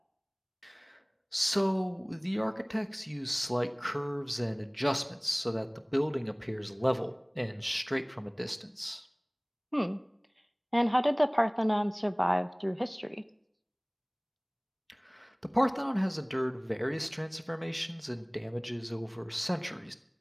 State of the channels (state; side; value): identical; both; correlation 1.00